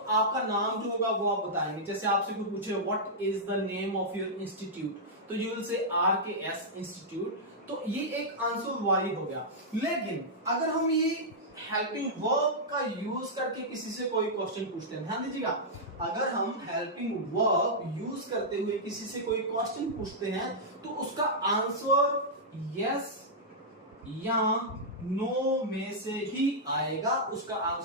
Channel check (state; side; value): normal; both; correlation -0.09